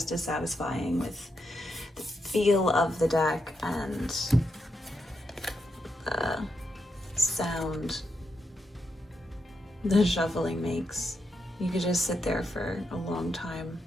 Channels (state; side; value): normal; both; correlation 0.84